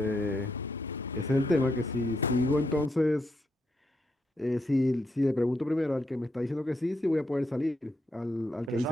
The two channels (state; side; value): normal; both; correlation 0.80